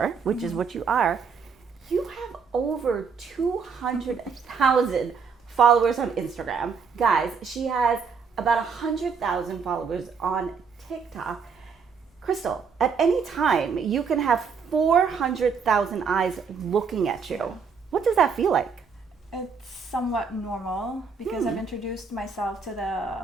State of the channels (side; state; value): left; quieter; 5.7 dB